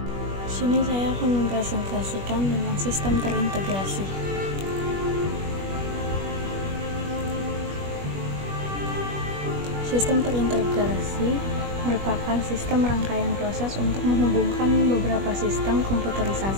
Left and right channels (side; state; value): left; late; 21 ms